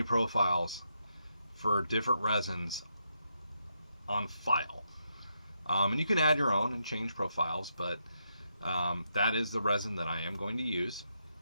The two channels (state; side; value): inverted; both; correlation -0.81